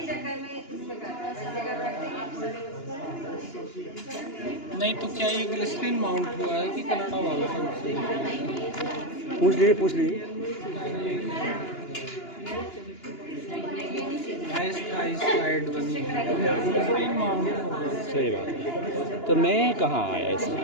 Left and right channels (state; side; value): late; right; 2.9 ms